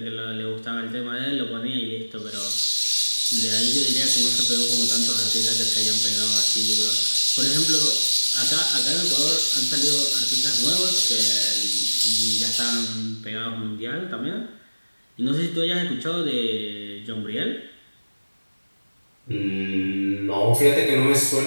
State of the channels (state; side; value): inverted; both; correlation -1.00